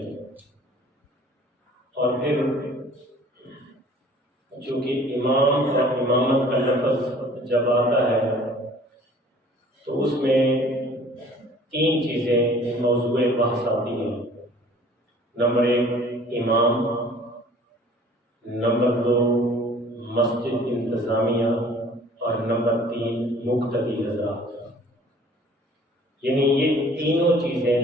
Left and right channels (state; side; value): normal; both; correlation 0.51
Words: اور پھر چونکہ امام اور امامت کا لفظ جب آتا ہے تو اس میں 3 چیزیں موضوع بحث آتی ہیں۔ نمبر 1 امام، نمبر 2 مسجد انتظامیہ، اور نمبر 3 مقتدی حضرات۔ یعنی یہ تینوں چیزیں